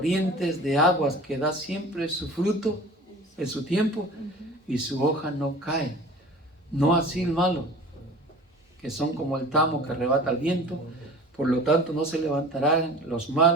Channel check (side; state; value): both; normal; correlation 0.41